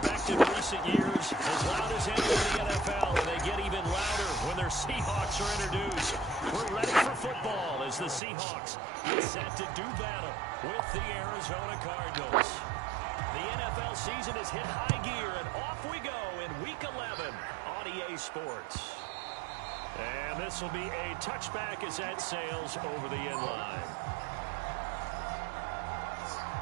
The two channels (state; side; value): drops out; left; at 8.2 s